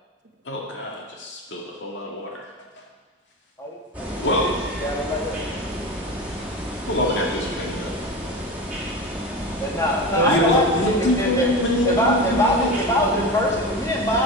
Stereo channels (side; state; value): both; normal; correlation 0.27